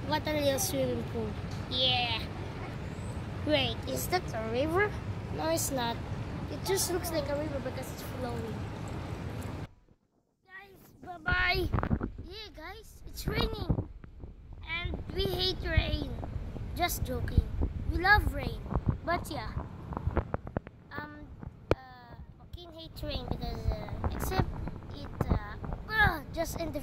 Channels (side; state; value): both; identical; correlation 1.00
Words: What a real swimming pool. Yeah. Wait, is that a river? No, it's not. It just looks like a river because it's flowing. Guys, bye-bye. Yeah, guys, it's raining. And we hate rain. Just joking. We love rain. But yeah. Joaquin hates rain because, except it, just end the